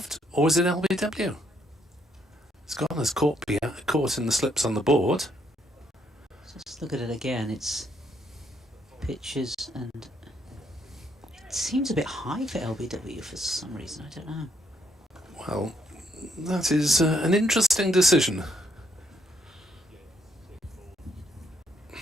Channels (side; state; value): both; normal; correlation 0.73